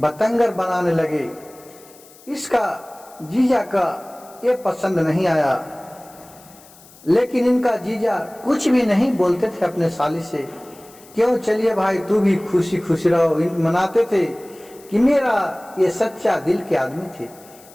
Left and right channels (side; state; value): left; noise; hiss, 24 dB below the sound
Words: बनाने लगे। इसका जीजा का ये पसंद नहीं आया, लेकिन इनका जीजा कुछ भी नहीं बोलते थे अपने साली से। क्यों, चलिए भाई तू भी खुशी खुशी रहो। मनाते थे कि मेरा ये सच्चा दिल के आदमी थे,